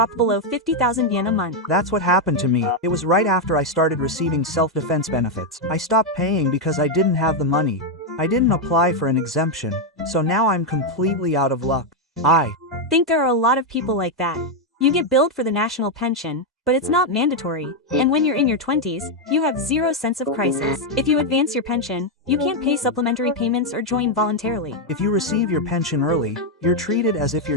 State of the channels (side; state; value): both; normal; correlation 0.02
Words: below 50,000 yen a month. That's what happened to me. It was right after I started receiving self-defense benefits. I stopped paying because I didn't have the money. I didn't apply for an exemption, so now I'm completely out of luck. I think there are a lot of people like that. You get billed for the national pension, but it's not mandatory, and when you're in your 20s, you have zero sense of crisis. If you advance your pension, you can't pay supplementary payments or join voluntarily. If you receive your pension early, you're treated as if